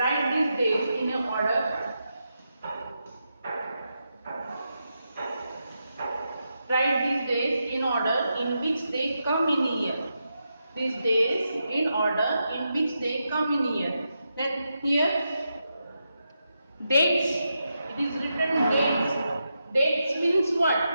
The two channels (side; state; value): both; inverted; correlation -0.86